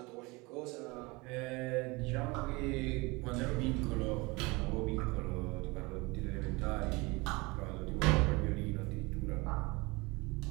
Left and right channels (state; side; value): quieter; left; 24.9 dB